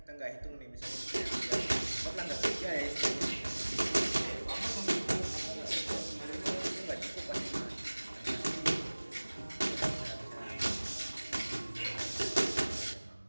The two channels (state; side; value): inverted; both; correlation -1.00